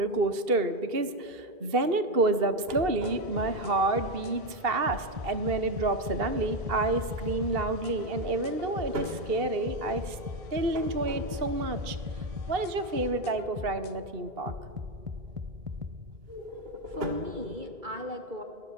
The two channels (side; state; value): left; late; 2.7 ms